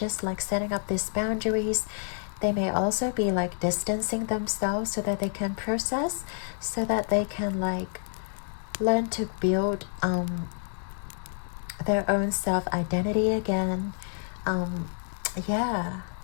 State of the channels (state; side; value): silent; right; digital silence